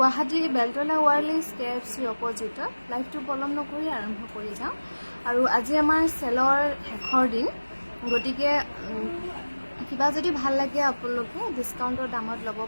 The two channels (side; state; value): both; inverted; correlation -1.00